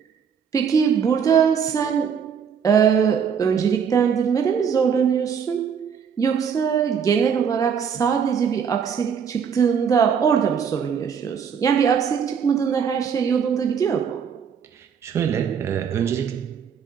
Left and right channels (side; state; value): left; quieter; 7.1 dB